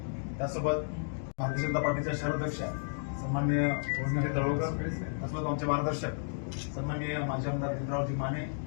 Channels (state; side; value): silent; right; digital silence